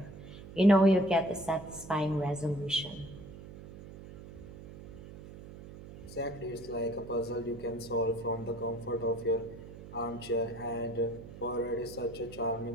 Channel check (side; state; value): right; noise; hum, 15 dB below the sound